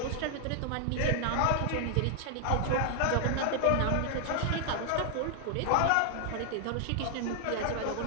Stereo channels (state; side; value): different; both; correlation 0.00